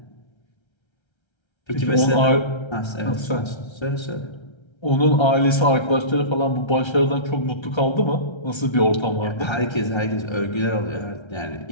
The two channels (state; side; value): late; right; 1.3 ms